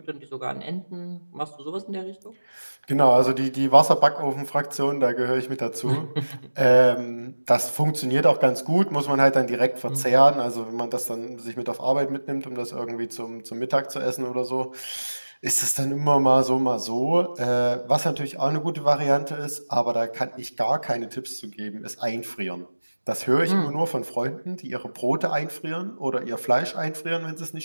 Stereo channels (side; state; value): both; inverted; correlation -1.00